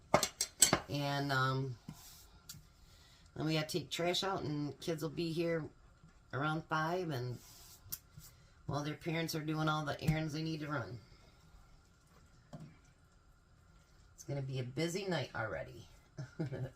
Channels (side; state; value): both; identical; correlation 1.00